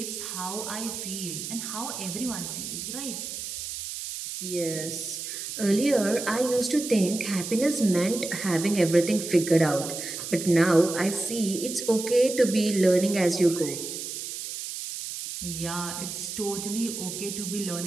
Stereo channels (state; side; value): noise; right; hiss, 7 dB below the sound